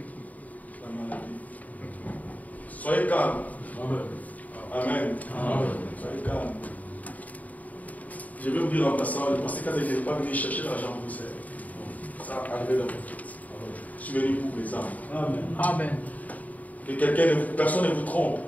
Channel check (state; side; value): late; right; 0.074 ms